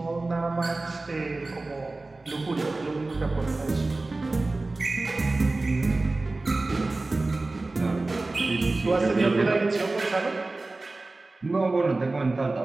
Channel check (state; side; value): quieter; left; 3.2 dB